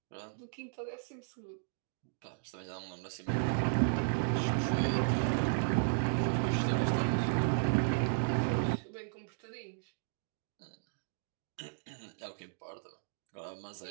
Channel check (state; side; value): silent; left; digital silence